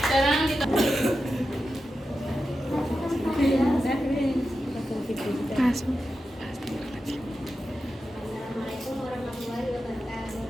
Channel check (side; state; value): both; normal; correlation 0.90